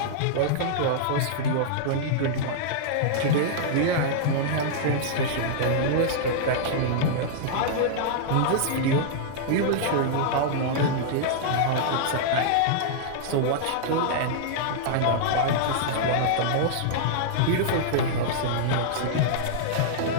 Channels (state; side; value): different; both; correlation -0.01